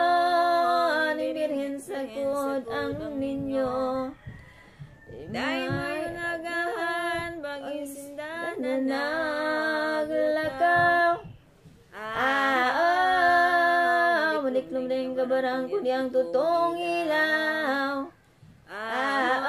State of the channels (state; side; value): identical; both; correlation 1.00